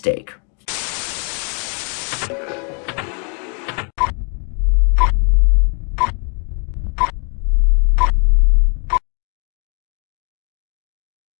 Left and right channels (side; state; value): right; quieter; 38.7 dB